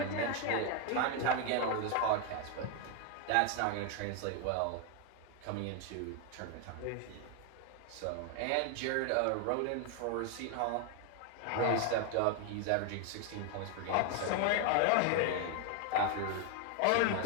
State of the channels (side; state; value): both; different; correlation 0.01